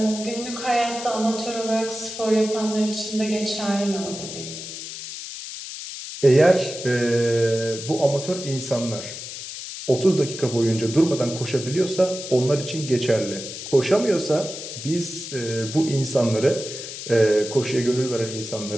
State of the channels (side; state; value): left; noise; hiss, 9 dB below the sound